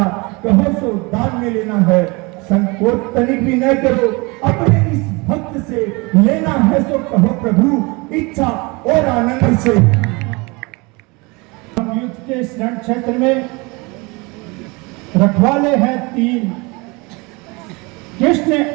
कहो सो दान में लेना है। संकोच तनिक भी न करो, अपने इस भक्त से लेना है सो कहो प्रभु, इच्छा और आनंद से। युद्ध के शरण क्षेत्र में रखवाले हैं 3, कृष्ण,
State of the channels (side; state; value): left; quieter; 26.6 dB